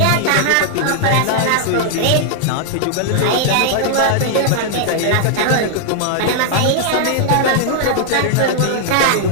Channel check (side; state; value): both; different; correlation -0.01